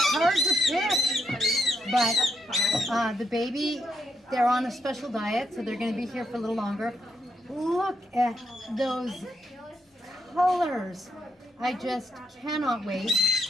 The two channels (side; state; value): both; normal; correlation 0.79